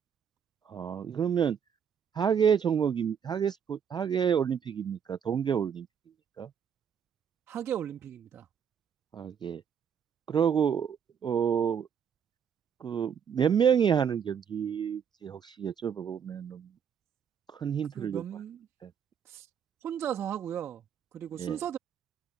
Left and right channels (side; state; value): left; quieter; 7.7 dB